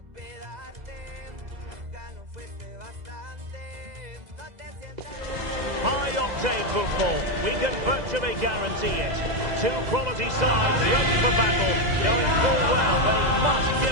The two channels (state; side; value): late; left; 2.0 ms